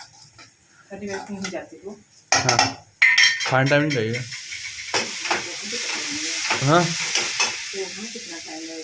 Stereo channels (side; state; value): both; identical; correlation 1.00